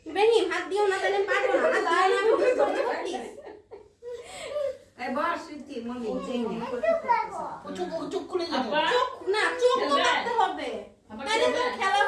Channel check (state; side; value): identical; both; correlation 1.00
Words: ইব্রাহিম হাত দিও না, তাহলে পারবো না। হাত দাও না, আমি বুঝতে পারছি। এই বস তুই মমি চেই না। চুপ করে যাবে। চোখ না, চোখ তো রাখতে হবে। তাহলে তো খেলা